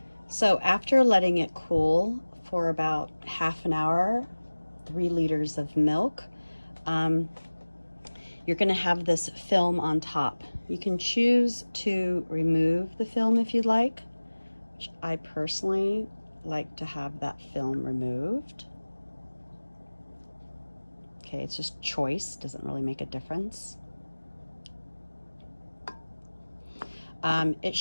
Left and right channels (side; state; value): both; inverted; correlation -1.00